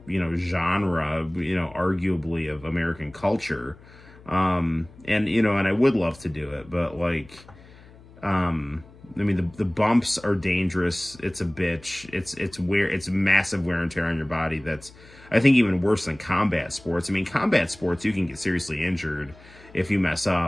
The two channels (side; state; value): left; noise; hum, 23 dB below the sound